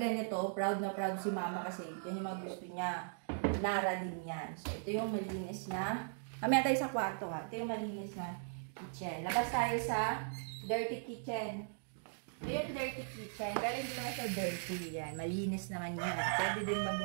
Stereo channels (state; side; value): silent; left; digital silence